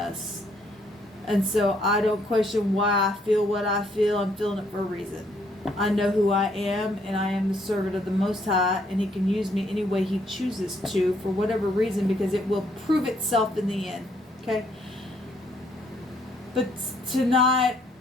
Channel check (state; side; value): normal; both; correlation 0.69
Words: And so I don't question why I feel what I feel. I'm feeling it for a reason. I know who I am, and I am the servant of the Most High, and he can use me any way he chooses to for whatever reason, because it will prove itself in the end. Okay? But tonight,